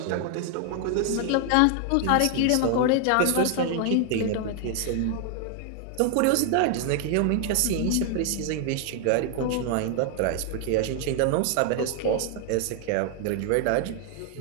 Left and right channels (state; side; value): different; both; correlation 0.00